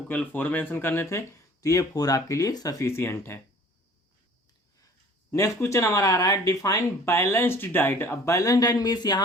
केवल 4 मेंशन करने थे, तो ये 4 आपके लिए सफिशियंट है। नेक्स्ट क्वेश्चन हमारा आ रहा है डिफाइन बैलेंस्ड डाइट। अब बैलेंस डाइट मीन्स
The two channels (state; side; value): normal; both; correlation 0.50